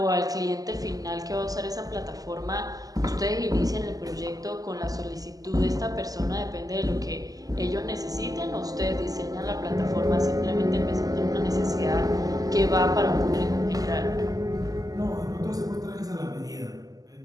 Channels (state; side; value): late; left; 0.17 ms